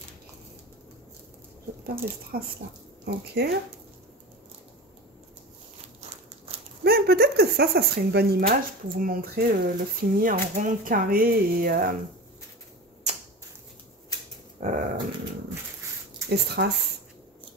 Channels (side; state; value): both; normal; correlation 0.30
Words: J'adore les strass là. Ok. Ben, peut-être que ça serait une bonne image pour vous montrer le fini en rond, carré et strass.